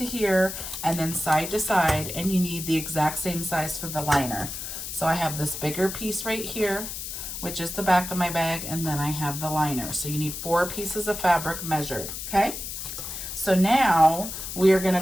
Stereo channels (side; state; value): left; noise; hiss, 7 dB below the sound